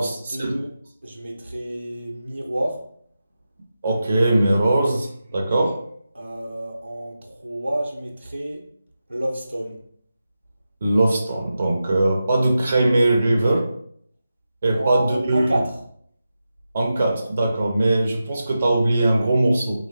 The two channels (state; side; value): inverted; both; correlation -0.91